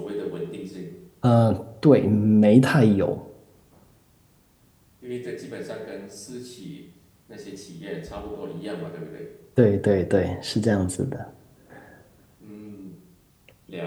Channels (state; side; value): identical; both; correlation 1.00